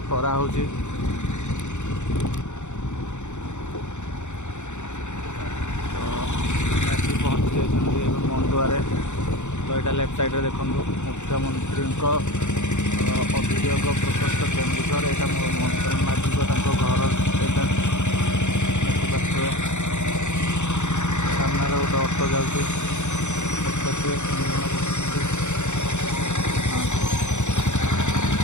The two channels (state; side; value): late; right; 0.84 ms